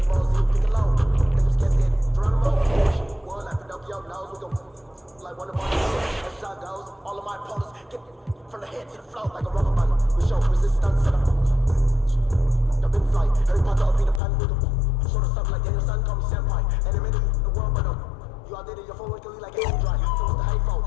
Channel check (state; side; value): drops out; right; at 14.2 s